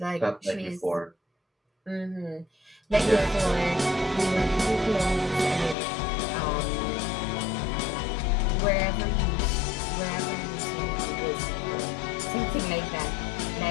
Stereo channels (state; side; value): drops out; right; at 5.8 s